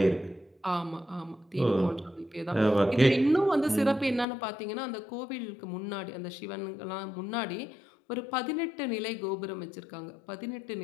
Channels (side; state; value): right; drops out; at 4.2 s